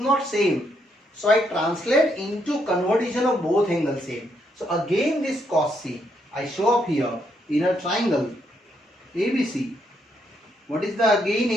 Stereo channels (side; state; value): both; normal; correlation 0.75